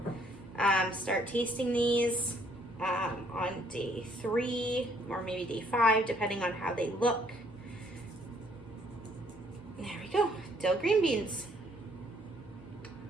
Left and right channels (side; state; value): both; normal; correlation 0.64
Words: start tasting these on day 3 or maybe day 5, depending on how they look. There we go, dill green beans.